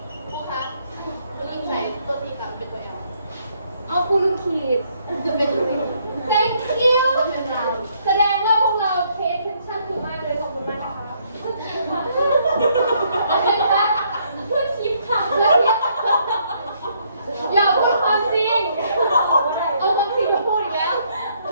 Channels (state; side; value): inverted; both; correlation -0.69